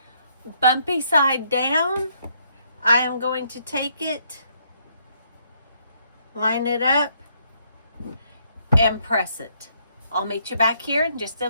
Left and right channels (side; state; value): both; inverted; correlation -0.71